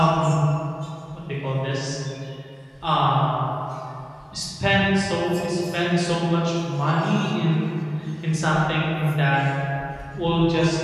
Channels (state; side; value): identical; both; correlation 1.00